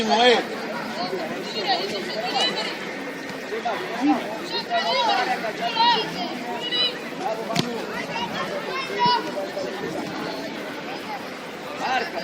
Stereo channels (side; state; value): both; identical; correlation 1.00